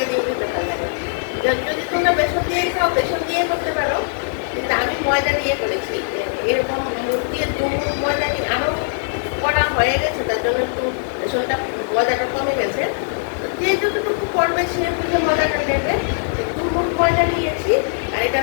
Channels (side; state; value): right; silent; digital silence